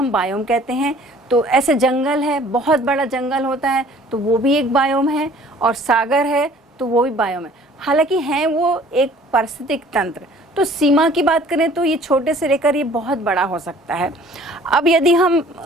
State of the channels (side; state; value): both; normal; correlation 0.52